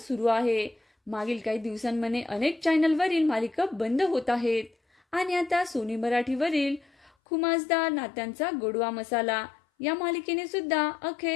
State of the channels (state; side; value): drops out; right; at 7.1 s